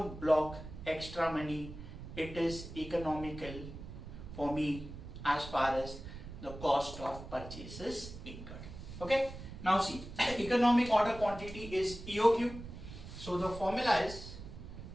block extra money. It is economical for me as far as the cost of purchase is incurred. Okay. Now see, economic order quantity is EOQ. So the formula is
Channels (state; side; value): noise; right; rumble, 12 dB below the sound